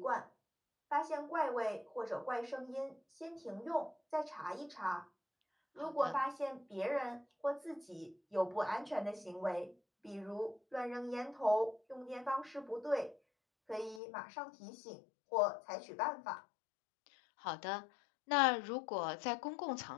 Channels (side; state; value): right; drops out; at 14.0 s